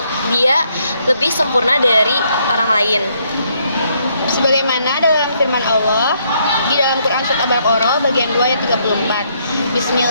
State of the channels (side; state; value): both; inverted; correlation -0.72